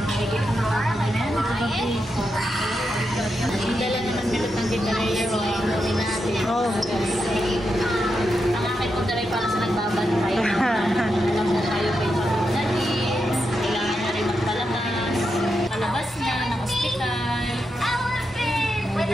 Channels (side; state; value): both; normal; correlation 0.85